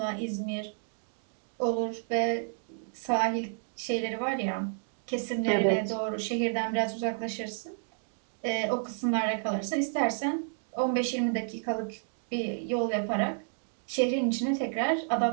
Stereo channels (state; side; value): silent; left; digital silence